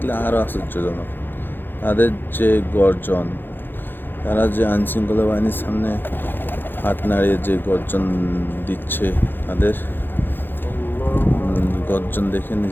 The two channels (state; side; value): late; right; 0.098 ms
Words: আরও আশ্চর্যজনক। তাদের যে গর্জন, তারা যে আইনশৃঙ্খলা বাহিনীর সামনে হাত নাড়িয়ে যে গর্জন দিচ্ছে, তাদের গর্জন দেখে